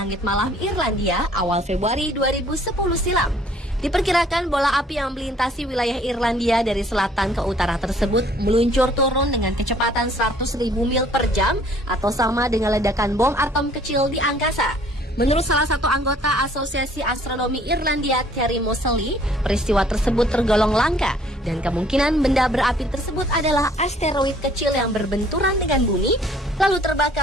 malam Irlandia awal Februari 2010 silam. Diperkirakan bola api yang melintasi wilayah Irlandia dari selatan ke utara tersebut meluncur turun dengan kecepatan 100.000 mil per jam atau sama dengan ledakan bom atom kecil di angkasa. Menurut salah satu anggota Asosiasi Astronomi Irlandia, Terry Moseley, peristiwa tersebut tergolong langka dan kemungkinan benda berapi tersebut adalah asteroid kecil yang berbenturan dengan bumi lalu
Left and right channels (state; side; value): normal; both; correlation 0.58